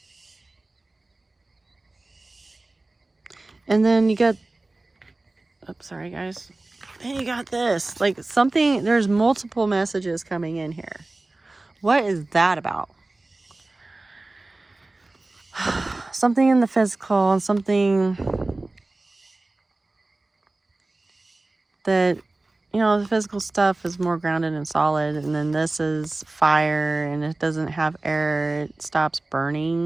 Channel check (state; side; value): quieter; left; 3.0 dB